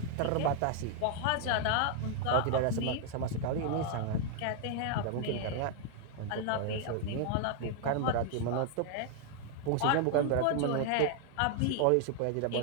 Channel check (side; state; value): both; different; correlation 0.00